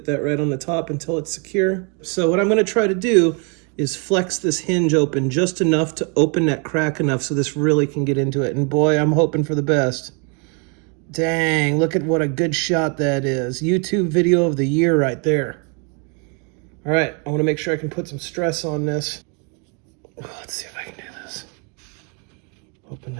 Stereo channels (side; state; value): left; quieter; 35.5 dB